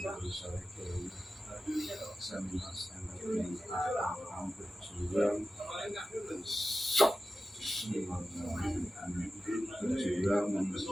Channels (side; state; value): both; normal; correlation 0.94